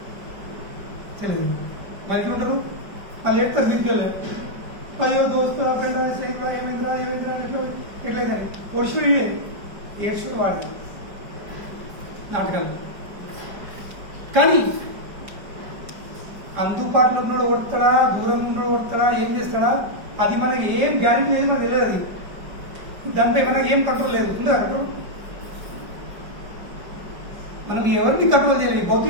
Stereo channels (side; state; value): left; late; 5.0 ms